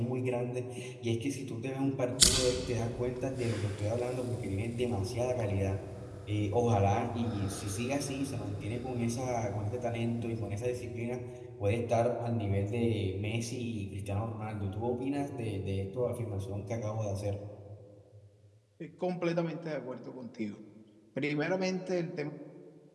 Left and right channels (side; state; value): both; identical; correlation 1.00